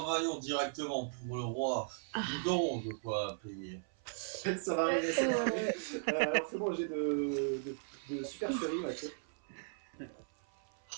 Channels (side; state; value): left; silent; 53 dB below the other